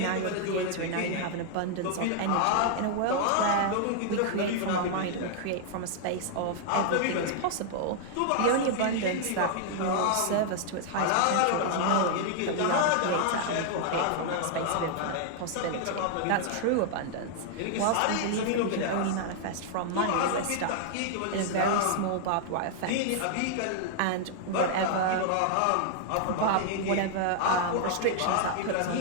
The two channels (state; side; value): different; both; correlation -0.01